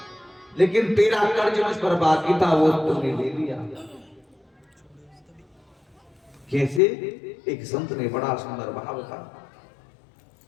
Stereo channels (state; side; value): drops out; right; at 6.8 s